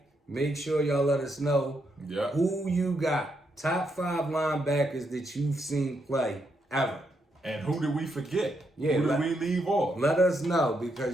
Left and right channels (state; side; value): normal; both; correlation 0.79